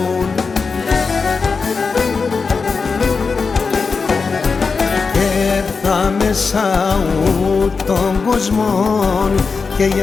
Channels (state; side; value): quieter; right; 4.8 dB